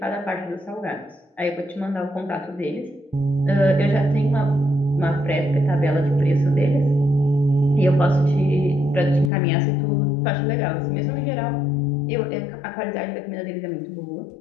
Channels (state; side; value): drops out; right; at 9.3 s